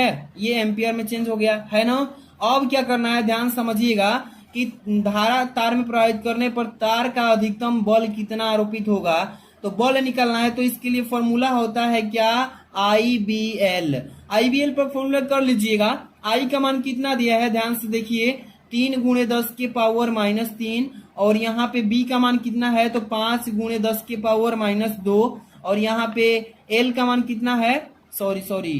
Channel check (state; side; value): identical; both; correlation 1.00